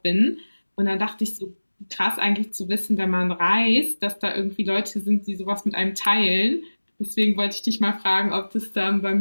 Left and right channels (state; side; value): inverted; both; correlation -1.00